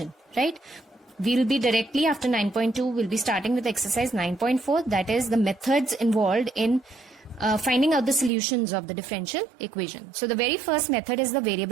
right? We'll be directly after 9.2, we'll be starting with exercise 9.4, that is the methods involved in finding out the solutions of the differential equation. So the very first method is the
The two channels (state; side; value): drops out; left; at 8.3 s